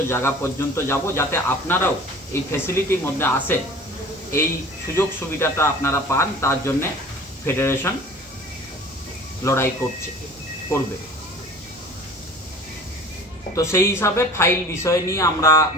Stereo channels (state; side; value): normal; both; correlation 0.43